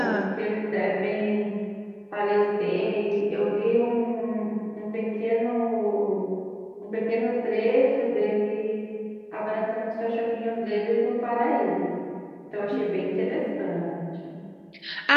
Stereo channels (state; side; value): identical; both; correlation 1.00